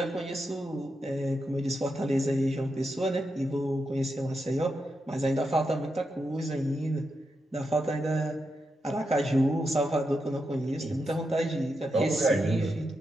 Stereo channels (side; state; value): both; normal; correlation 0.86